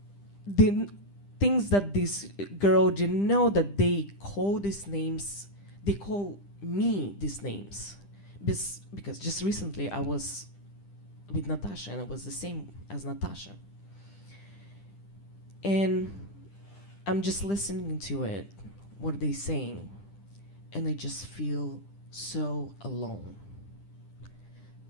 the things that this girl didn't know, that they call these names, they call me these names. Because just recently I was with Natasha, and it was the same as Natasha. And I'm just listening to it, what are they saying? And I just feel so alone.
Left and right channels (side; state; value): right; late; 10 ms